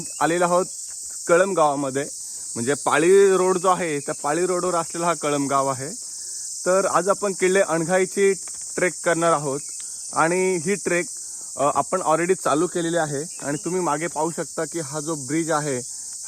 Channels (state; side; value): identical; both; correlation 1.00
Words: आलेलो आहोत कळंब गावामध्ये, म्हणजे पाळी रोड जो आहे त्या पाळी रोडवर असलेला हा कळंब गाव आहे. तर आज आपण किल्ले अणघाईची ट्रेक करणार आहोत आणि ही ट्रेक आपण ऑलरेडी चालू केलेली आहे. आणि तुम्ही मागे पाहू शकता की हा जो ब्रिज आहे,